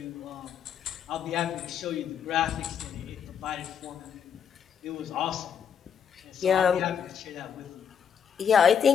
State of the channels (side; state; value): right; quieter; 7.7 dB